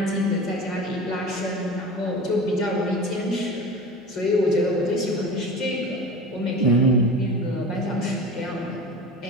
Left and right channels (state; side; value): normal; both; correlation 0.33